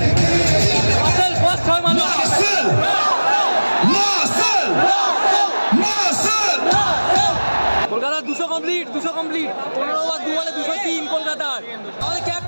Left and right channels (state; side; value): inverted; both; correlation -1.00